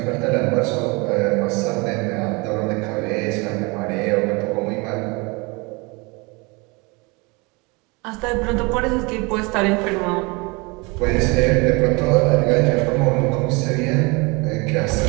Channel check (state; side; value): quieter; left; 27.4 dB